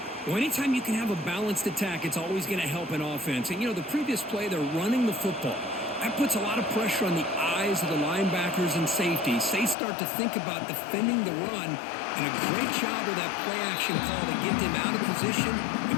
Well, anytime you can have a balanced attack, it's always going to help an offense. And, you know, the previous play, they're running the football. That puts a lot of pressure on the eyes of the linebackers and safeties. They start to think about defending the run, and a great job with that play-action call to get them out of position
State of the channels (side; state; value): right; drops out; at 9.8 s